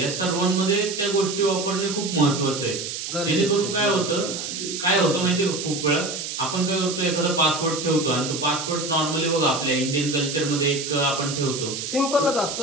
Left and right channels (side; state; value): right; noise; hiss, 6 dB below the sound